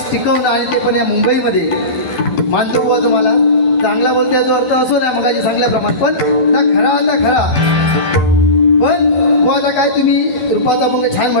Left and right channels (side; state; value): right; late; 12 ms